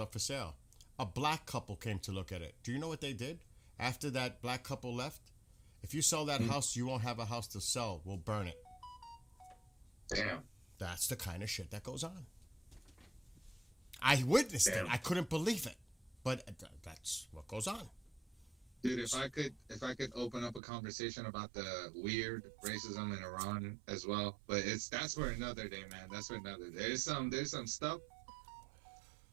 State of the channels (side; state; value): left; drops out; at 20.6 s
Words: for sale. A black couple came to look at it. Do you know what they did? After that black couple left, if you sell that house, you won't have a house to sell. We'll burn it. Damn. That's the kind of shit that goes on. I witnessed it. I couldn't believe it. But that's what goes on. Dude, if I could open up a conversation about the weird racism in Iran as well, but that's for another day, man. That's for another day. There's some stuff.